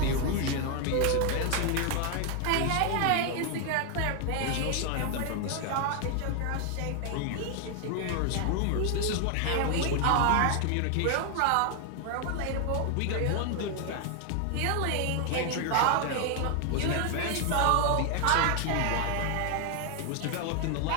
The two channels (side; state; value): both; different; correlation 0.00